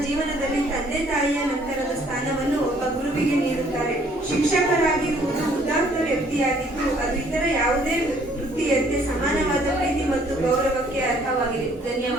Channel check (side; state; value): both; normal; correlation 0.62